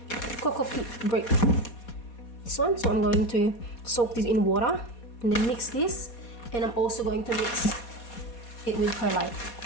Cocoa peat brick. This one. So I'm going to soak this in water and then mix this. And I'm also going to mix it with perlite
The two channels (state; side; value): late; right; 4.2 ms